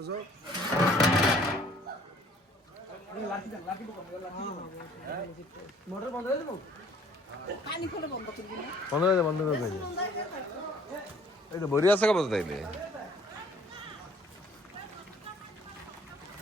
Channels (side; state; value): both; normal; correlation 0.56